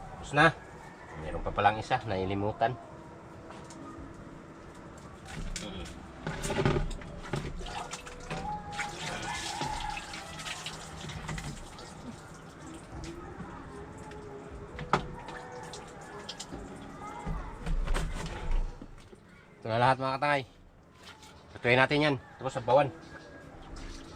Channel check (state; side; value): identical; both; correlation 1.00